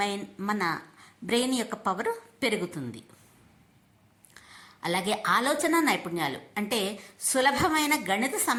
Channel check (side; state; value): both; identical; correlation 1.00